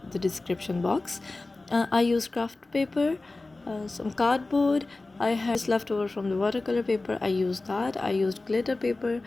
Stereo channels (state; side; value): quieter; right; 3.2 dB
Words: the description box. I use craft paper, some cardboard. I had left over from the watercolor paper. I used that. I used glitter paper.